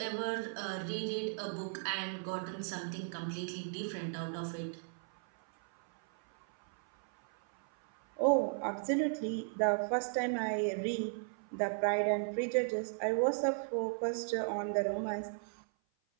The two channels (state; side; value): silent; left; 54 dB below the other